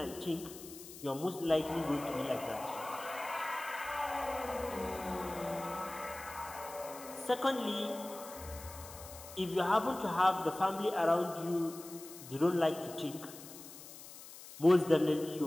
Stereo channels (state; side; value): noise; left; hiss, 15 dB below the sound